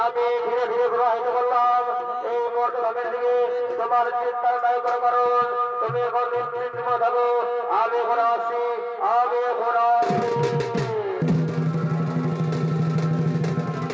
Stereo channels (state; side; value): identical; both; correlation 1.00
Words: আমি ধীরে ধীরে প্রবাহিত করলাম এই মর্তধামের দিকে। তোমার চিন্তার নাই কোনো কারণ তুমি এখন নিশ্চিন্ত থাকো, আমি এখন আসি, আমি এখন আসি।